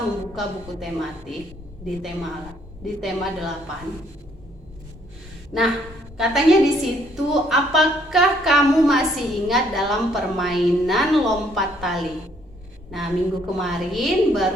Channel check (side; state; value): both; normal; correlation 0.66